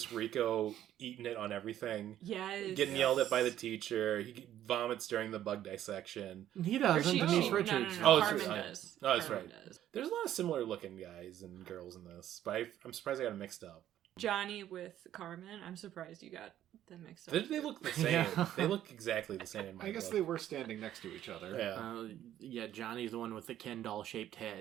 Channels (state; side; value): quieter; left; 11.9 dB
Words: Rico eating it on everything. Yes. Getting yelled at by the teacher. He vomits during the bug dissection. he Or doesn't. Denise no, Richards. No, Oh, it's Carmen right. does. Oh, that's Carmen right. does. There's a lot of similar looking guys and girls in this, but I'm surprised I got them mixed up. Johnny with Carmen. I'm surprised you got them mixed up. They look the same. Yeah. They look exactly the same in my I guess book. they were standing next to each other. Yeah. Yeah, Johnny's the one with the Ken doll shaped